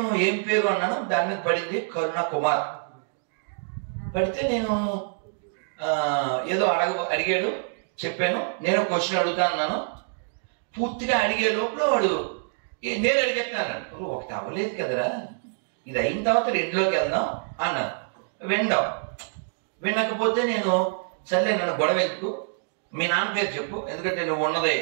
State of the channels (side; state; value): left; silent; digital silence